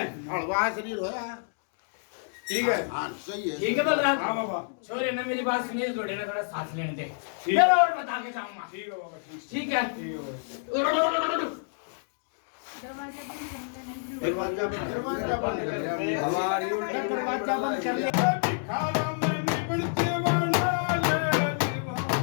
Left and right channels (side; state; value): right; silent; digital silence